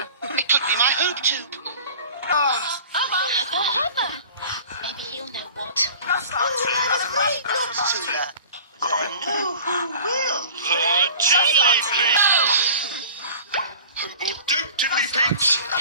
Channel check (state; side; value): inverted; both; correlation -0.43